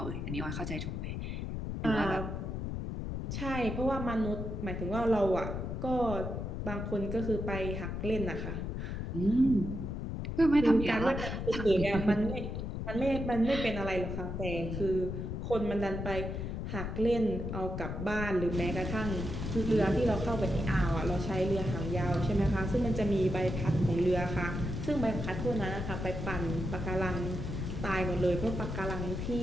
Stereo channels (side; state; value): left; noise; rumble, 4 dB below the sound